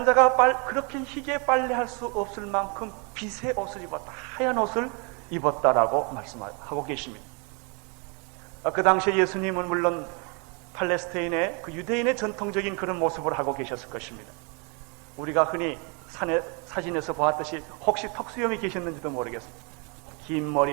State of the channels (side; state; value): left; quieter; 34.4 dB